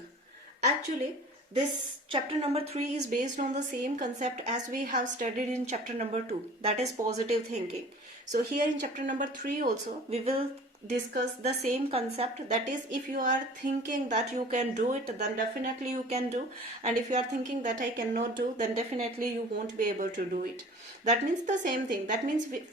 Actually, this chapter number 3 is based on the same concept as we have studied in chapter number 2, that is positive thinking. So here in chapter number 3 also we will discuss the same concept, that is if you are thinking that you can do it, then definitely you can do, and if you are thinking that I cannot do, then definitely you won't be able to do it. That means the same thing. That means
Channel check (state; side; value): normal; both; correlation 0.44